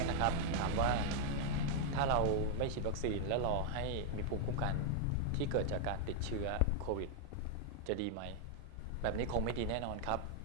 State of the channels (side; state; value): both; different; correlation 0.00